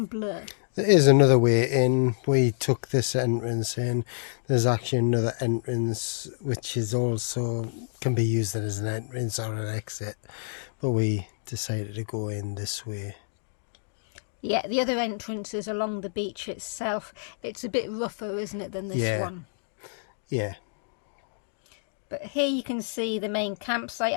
Bleu. There is another way in. We took this entrance in. There's actually another entrance which is also can be used as an entrance or an exit, but we decided to go in this way. Yeah, the other entrance is along the beach itself. It's a bit rougher, isn't it, than this one? Yeah. But here you can see the main campsite.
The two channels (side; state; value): right; silent; digital silence